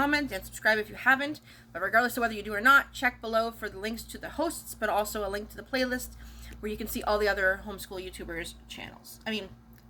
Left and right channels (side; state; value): both; identical; correlation 1.00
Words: and subscribe if you haven't. But regardless of whether you do or not, check below for the links to the hosts, but also a link to the playlist where you can see all the other homeschool YouTubers' channels.